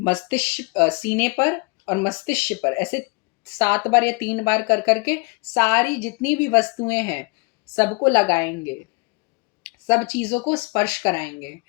मस्तिष्क सीने पर और मस्तिष्क पर ऐसे 7 बार या 3 बार कर करके सारी जितनी भी वस्तुएं हैं सबको लगाएंगे, सब चीज़ों को स्पर्श कराएंगे।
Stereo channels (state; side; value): quieter; right; 29.1 dB